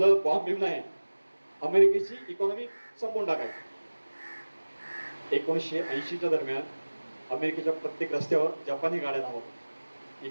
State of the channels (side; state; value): both; inverted; correlation -1.00